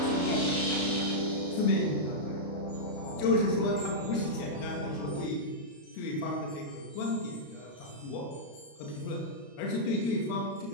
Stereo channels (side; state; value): right; late; 34 ms